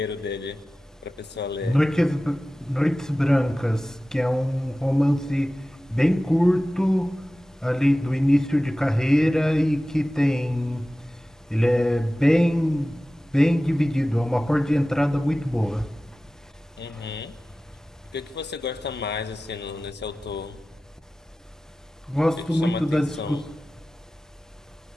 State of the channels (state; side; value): normal; both; correlation 0.96